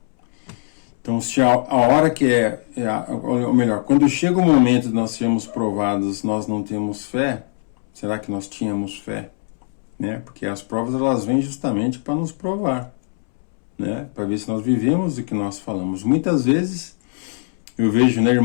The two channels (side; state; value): right; silent; 65 dB below the other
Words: Então, se a hora que ou melhor, quando chega o momento de nós sermos provados, nós não temos fé, será que nós tínhamos fé? Né? Porque as provas, elas vêm justamente para nos provar, né? Para ver se nós vivemos o que nós falamos. Muitas vezes eu vejo, né,